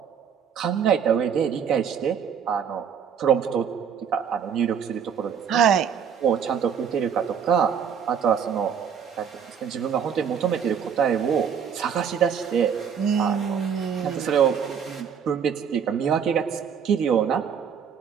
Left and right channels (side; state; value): left; quieter; 7.5 dB